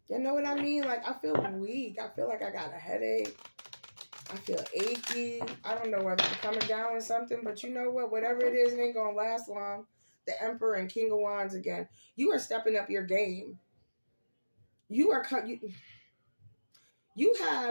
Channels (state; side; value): inverted; both; correlation -1.00